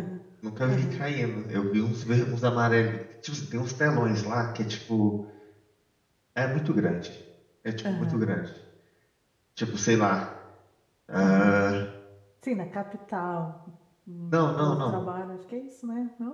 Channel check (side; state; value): both; identical; correlation 1.00